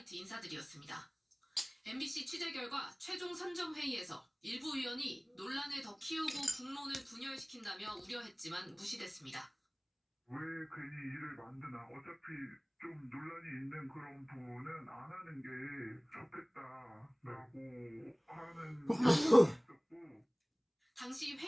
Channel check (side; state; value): both; identical; correlation 1.00